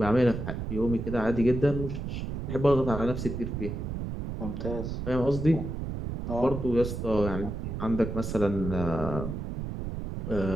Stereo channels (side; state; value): right; noise; rumble, 5 dB below the sound